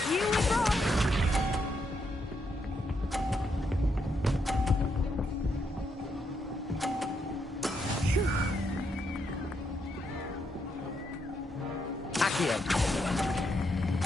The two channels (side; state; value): both; normal; correlation 0.79